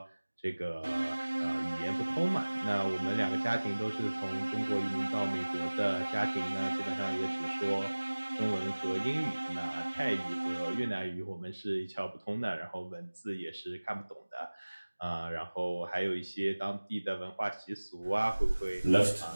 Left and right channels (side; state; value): both; inverted; correlation -1.00